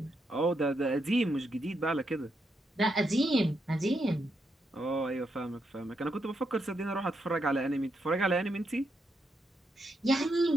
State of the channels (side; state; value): both; normal; correlation 0.81